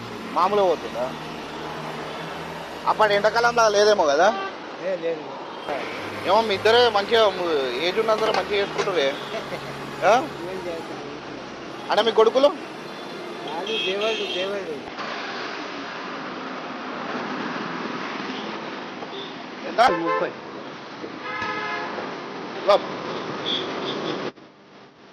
మామూలుగా పోతుందా? అప్పటి ఎండాకాలంలో లేదేమో కదా. ఏమో మీ ఇద్దరే మంచిగా ఏజ్ ఉన్నందరూ మంచిగా చేసుకుంటారే. అంటే మీ కొడుకులు ఎంత? 30.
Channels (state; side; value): identical; both; correlation 1.00